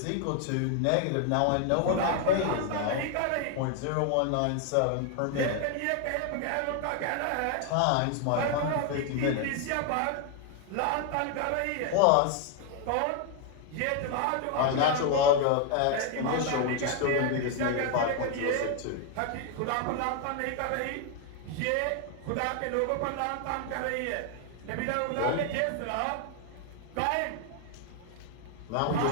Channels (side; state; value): both; different; correlation 0.01